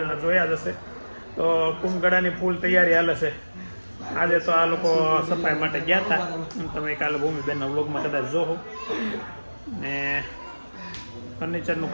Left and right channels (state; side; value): inverted; both; correlation -1.00